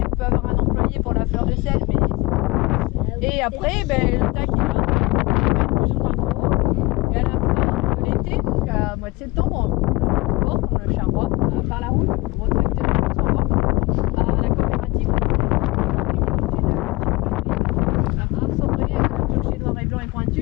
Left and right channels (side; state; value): right; quieter; 23.0 dB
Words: on peut avoir un employé pour la fleur de sel, mais et après, ben, le tac il est là, il va être plus ou moins gros. Et à la fin de l'été, donc à mois de septembre, on porte, on le charroie par la route, gros tracteur, on s'en va à la coopérative. Un sombré, le clocher noir et blanc et